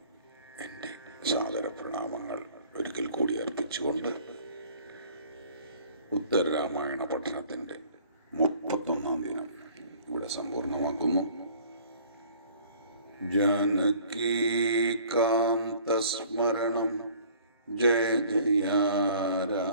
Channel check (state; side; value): inverted; both; correlation -0.53